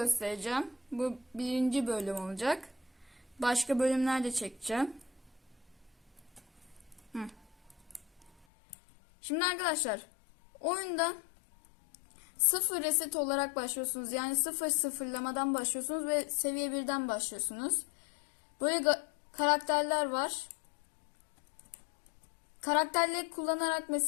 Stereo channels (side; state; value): right; drops out; at 8.5 s